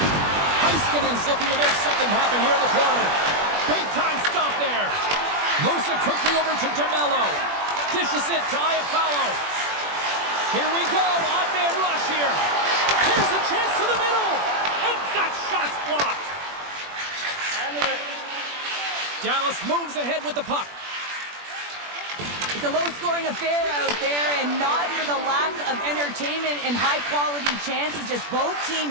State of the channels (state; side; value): late; left; 21 ms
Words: Heiskanen's looking to make something happen here in the corner. Big time stop there. Moves it quickly over to DeMello. Dishes it to Iafallo. Here we go. Odd man rush here. Here's a chance to the middle. And that shot's blocked. Dallas moves ahead with the puck. It's a low-scoring affair out there, and not for the lack of entertainment and high-quality chances. Just both